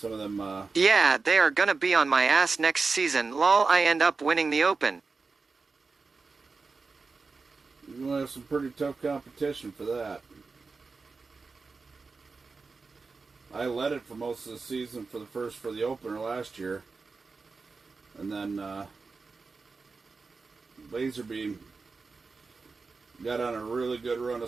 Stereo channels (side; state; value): left; quieter; 4.3 dB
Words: of them, Yeah, they are gonna be on my ass next season. Lol, I end up winning the Open. you're going to have some pretty tough competition for that. I led it for most of the season for the opener last year. And then Laserbeam got on a really good run